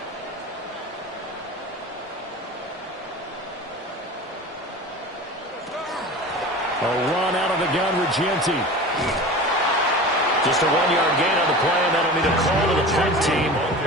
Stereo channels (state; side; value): normal; both; correlation 0.34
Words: A run out of the gun, Regenti. Just a 1-yard gain on the play, and that'll be the call to the punt team